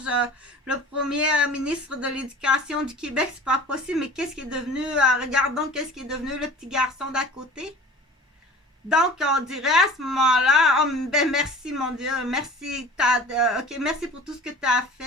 le premier ministre de l'Éducation du Québec, c'est pas possible, mais qu'est-ce qui est devenu, regardons qu'est-ce qui est devenu le petit garçon d'à côté. Donc, on dirait à ce moment-là, oh, ben merci mon Dieu, merci, merci pour tout ce que tu as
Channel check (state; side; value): normal; both; correlation 0.42